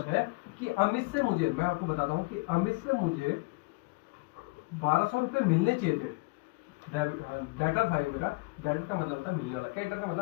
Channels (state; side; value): quieter; right; 26.3 dB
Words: है कि अमित से मुझे, मैं आपको बताता हूं कि अमित से मुझे 1200 रुपए मिलने चाहिए थे, डेटर था ये मेरा, डेटर का मतलब होता है मिलने वाला, क्रेडिटर का